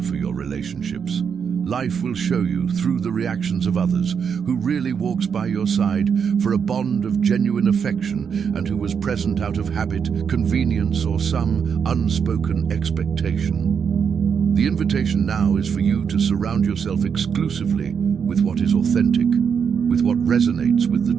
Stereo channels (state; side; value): quieter; left; 6.8 dB